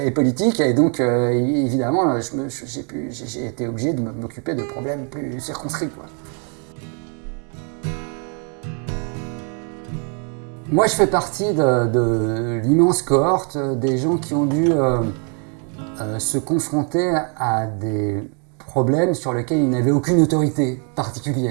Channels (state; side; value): quieter; left; 39.8 dB